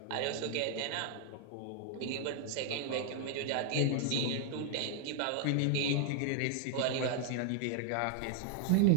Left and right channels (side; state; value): both; different; correlation 0.00